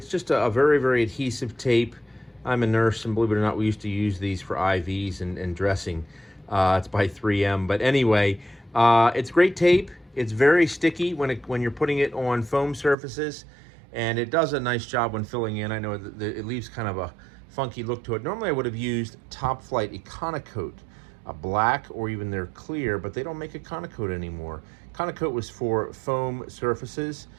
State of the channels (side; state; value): left; drops out; at 13.0 s